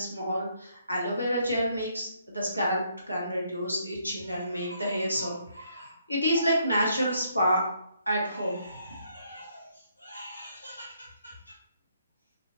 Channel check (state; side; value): inverted; both; correlation -0.71